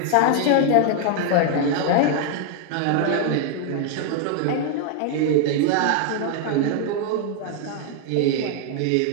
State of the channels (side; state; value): both; different; correlation 0.00